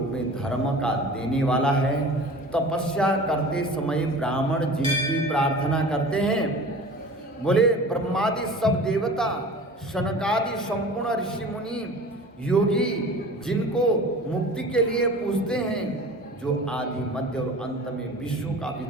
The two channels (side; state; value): both; normal; correlation 0.40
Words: में धर्म का देने वाला है, तपस्या करते समय ब्राह्मण जिनकी प्रार्थना करते हैं, बोले ब्रह्मादि सब देवता, शनकादि संपूर्ण ऋषि मुनि योगी जिनको मुक्ति के लिए पूजते हैं, जो आदि मध्य और अंत में विश्व का